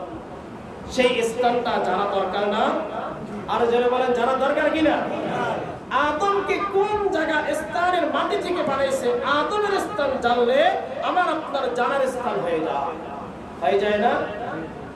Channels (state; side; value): identical; both; correlation 1.00